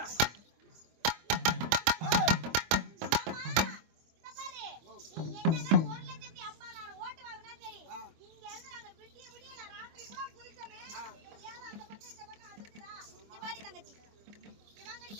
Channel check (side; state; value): left; late; 25 ms